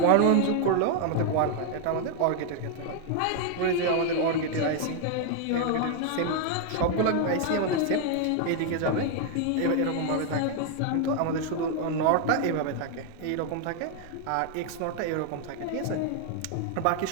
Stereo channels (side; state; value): both; different; correlation 0.00